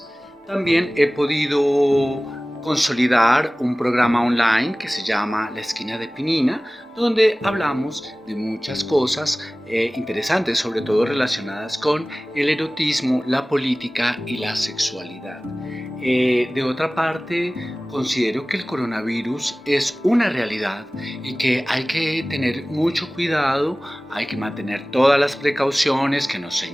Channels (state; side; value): normal; both; correlation 0.98